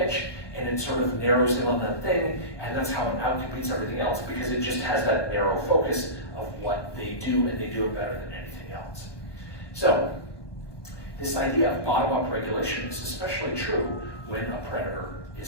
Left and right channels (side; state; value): right; late; 1.2 ms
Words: and it sort of narrows in on that thing, and that's how it outcompetes everything else, because it just has that narrow focus of what they do, and they do it better than anything else. So, this idea of bottom-up regulation is especially true when a predator